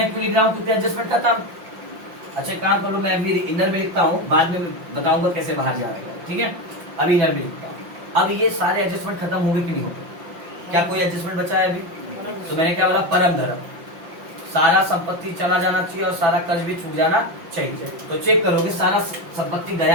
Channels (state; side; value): late; left; 5.8 ms